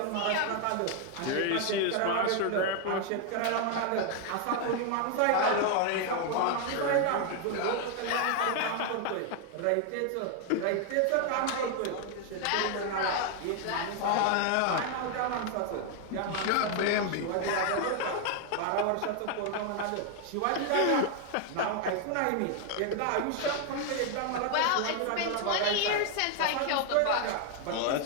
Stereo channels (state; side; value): different; both; correlation 0.00